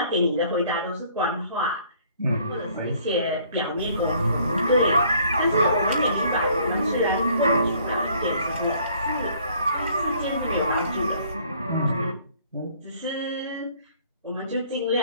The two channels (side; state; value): both; inverted; correlation -0.59